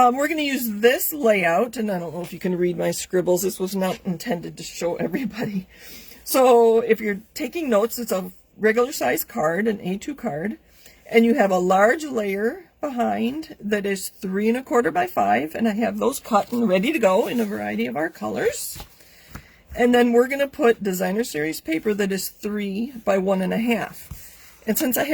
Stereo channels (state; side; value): identical; both; correlation 1.00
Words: going to use this layout, and I don't know if you can read my scribbles. This was not intended to show everybody. So if you're taking notes, it's a regular size card, an A2 card, and you have a large layer behind that is 3 1/4 by 5, and I have those cut and ready to go in a variety of our colors. And then we're going to put Designer Series paper that is 3 by 1 1/2. And since I